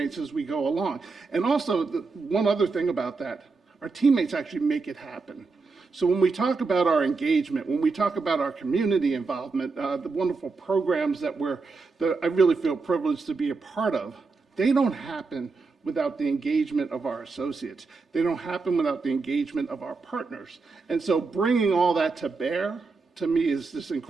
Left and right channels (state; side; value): quieter; left; 4.2 dB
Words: as we go along. And also, one other thing about that, our teammates actually make it happen. So when we talk about our engagement, when we talk about our community involvement, the wonderful programs that I really feel privileged to be a part of, they don't happen without the engagement of our associates. They don't happen without the engagement of our partners. And so bringing all that to bear, to me, is just